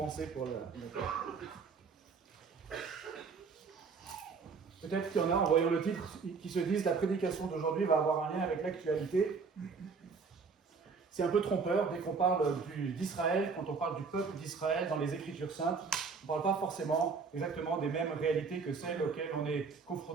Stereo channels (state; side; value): quieter; left; 5.1 dB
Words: pour le. Peut-être qu'il y en a, en voyant le titre, qui se disent la prédication d'aujourd'hui va avoir un lien avec l'actualité. C'est un peu trompeur dès qu'on parle d'Israël, quand on parle du peuple d'Israël dans les Écritures saintes. On ne parle pas forcément exactement des mêmes réalités que celles auxquelles on est